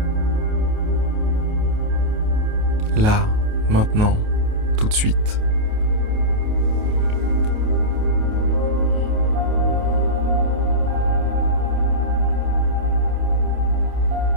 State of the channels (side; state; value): left; late; 28 ms